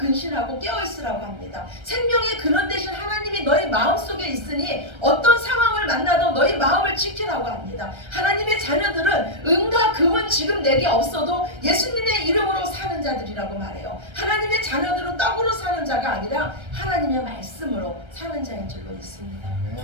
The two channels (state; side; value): late; left; 1.3 ms